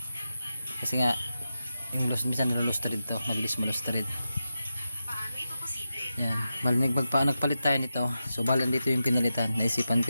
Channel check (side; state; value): both; inverted; correlation -0.90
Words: kasi nga yung minsan nalulustrid to, mabilis malustrid. Yan, nagpalit tayo nito. So balan dito yung pinalitan. Naisipan